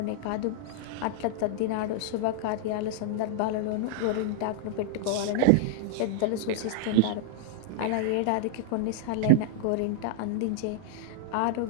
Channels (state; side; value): different; both; correlation -0.01